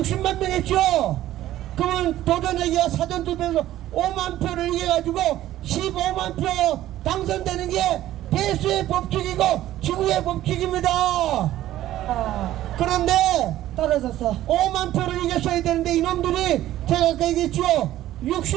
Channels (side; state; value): left; quieter; 13.9 dB